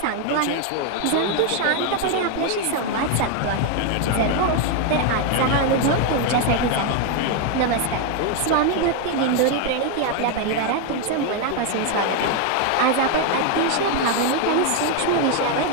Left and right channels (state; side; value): different; both; correlation 0.01